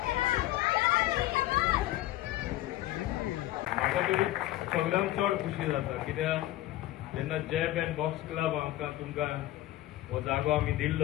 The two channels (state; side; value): quieter; right; 15.5 dB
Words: सगळ्यांक चड खुशी जाता कित्याक जेन्ना जॅब एंड बॉक्स क्लब आमकां तुमकां हो जागो आमी